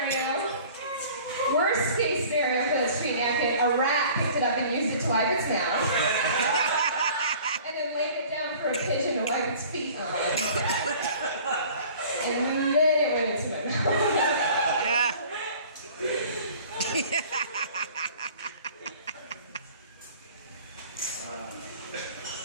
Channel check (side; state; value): both; inverted; correlation -0.48